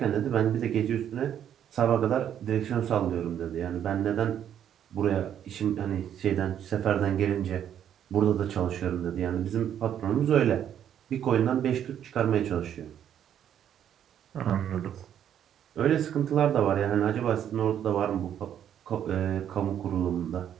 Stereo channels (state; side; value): quieter; left; 9.8 dB